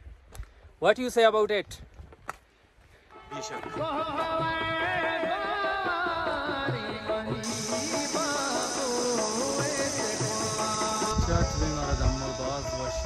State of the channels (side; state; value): both; identical; correlation 1.00